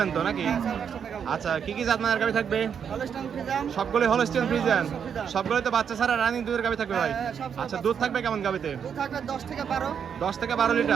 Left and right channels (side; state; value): left; quieter; 7.5 dB